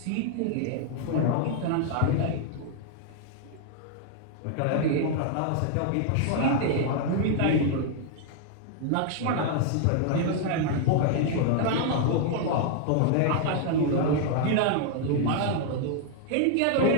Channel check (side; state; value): both; different; correlation 0.00